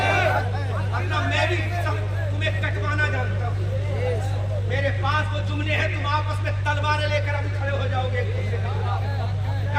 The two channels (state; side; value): identical; both; correlation 1.00